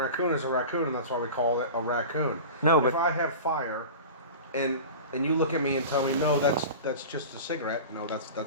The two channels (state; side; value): inverted; both; correlation -0.33